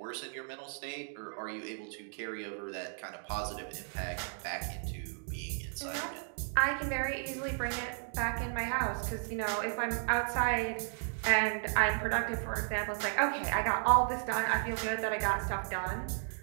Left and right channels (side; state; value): left; silent; digital silence